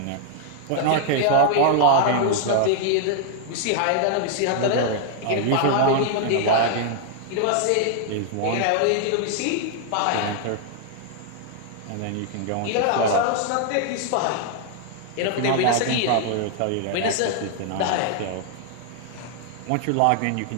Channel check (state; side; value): different; both; correlation 0.00